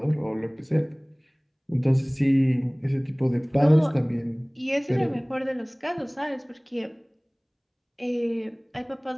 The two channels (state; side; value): identical; both; correlation 1.00